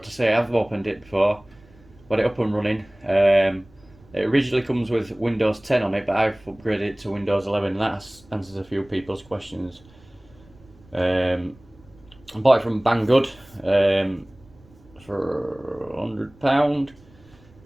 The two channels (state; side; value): noise; right; rumble, 27 dB below the sound